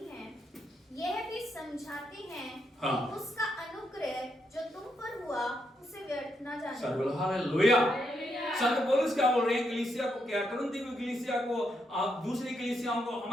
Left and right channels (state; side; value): normal; both; correlation 0.80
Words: हैं यह भी समझाते हैं हाँ। कि उसका अनुग्रह जो तुम पर हुआ उसे व्यर्थ न जाने। सब बोलो हालेलुया। संत पौलुस क्या बोल रहे हैं कलीसिया को, क्या कुरिन्थी की कलीसिया को, दूसरी कलीसियाओं को,